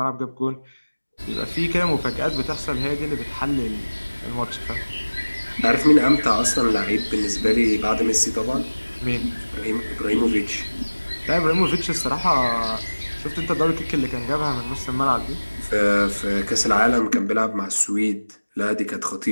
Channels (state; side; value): inverted; both; correlation -1.00